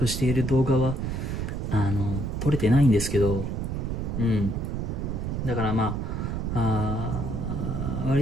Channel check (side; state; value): right; noise; rumble, 2 dB below the sound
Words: している動画は撮れてないんですけど、だから